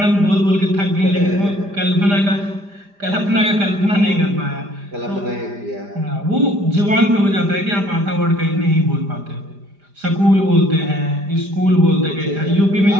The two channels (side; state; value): left; late; 5.0 ms